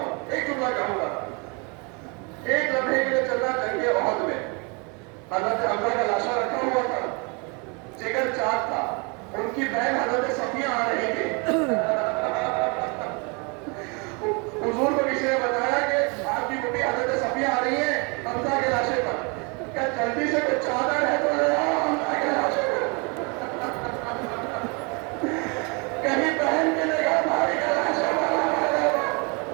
ایک جملہ کہوں گا. ایک لمحے کے لیے چلنا جنگ احد میں حضرت حمزہ کا لاشا رکھا ہوا تھا، جگر چاک تھا. ان کی بہن حضرت صفیہ آ رہی تھی. حضور کو کسی نے بتایا کہ آپ کی بیٹی حضرت صفیہ آ رہی ہے حمزہ کے لاشے پر. کیا جلدی سے کچھ چادر ہے تو لے آؤ حمزہ کے لاشے پر. کہیں بہن کے نگاہ بھائی کا لاشا والا والے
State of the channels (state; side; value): quieter; left; 31.8 dB